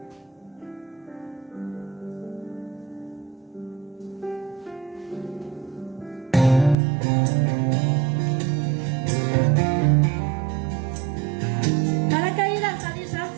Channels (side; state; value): left; drops out; at 6.8 s